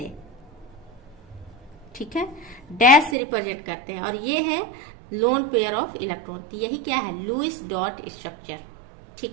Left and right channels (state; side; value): drops out; left; at 3.2 s